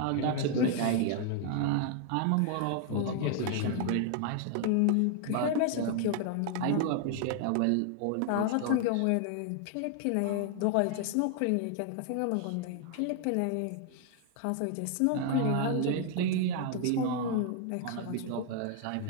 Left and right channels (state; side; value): different; both; correlation 0.00